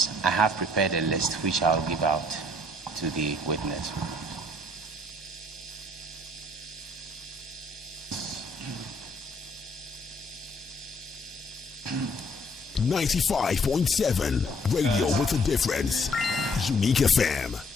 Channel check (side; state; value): both; normal; correlation 0.64